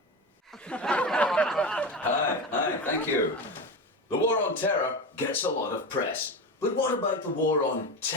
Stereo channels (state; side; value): normal; both; correlation 0.22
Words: Hi, thank you. The War on Terror gets a lot of press. But what about the War on